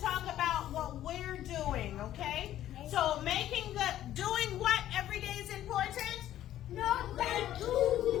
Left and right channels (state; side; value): quieter; right; 12.5 dB